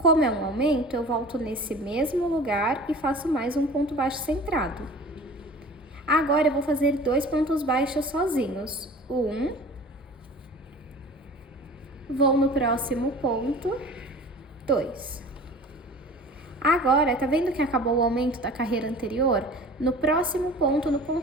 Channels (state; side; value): normal; both; correlation 0.41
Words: é um aumento, eu volto nesse mesmo lugar e faço mais um ponto baixo centrado. Agora, eu vou fazer 2 pontos baixos sozinhos. Vou no próximo ponto, 2. Agora, tá vendo que acabou o aumento da carreira anterior? No próximo ponto, no